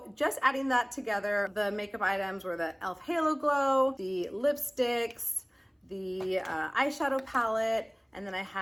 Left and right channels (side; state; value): both; identical; correlation 1.00